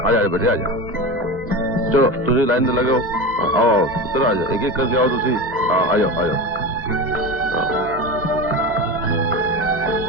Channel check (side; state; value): both; normal; correlation 0.25